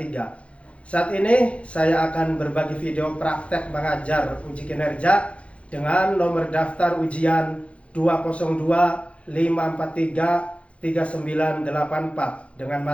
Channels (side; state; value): right; late; 0.062 ms